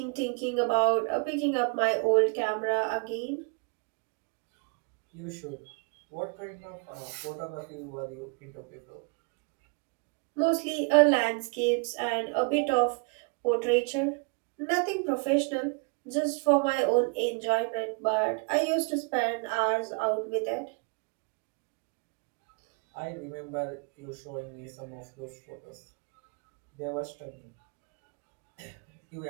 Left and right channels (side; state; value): left; quieter; 35.4 dB